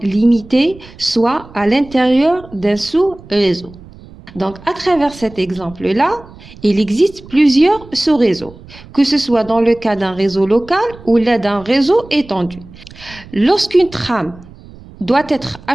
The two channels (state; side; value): noise; right; rumble, 20 dB below the sound